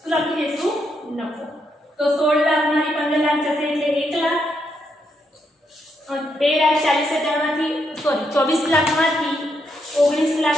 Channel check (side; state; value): both; normal; correlation 0.78